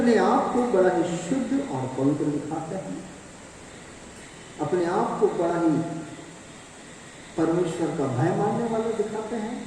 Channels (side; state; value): both; identical; correlation 1.00